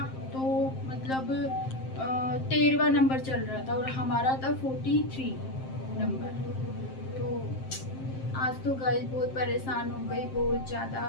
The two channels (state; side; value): late; right; 7.6 ms